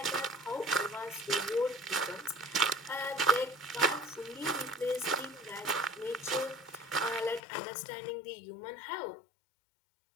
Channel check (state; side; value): drops out; right; at 7.4 s